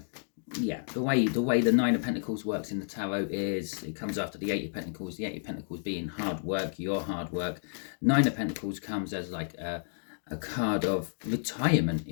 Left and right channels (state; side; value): silent; right; digital silence